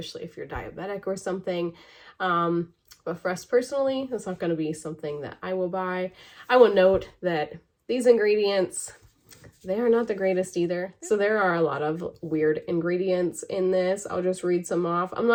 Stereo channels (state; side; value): identical; both; correlation 1.00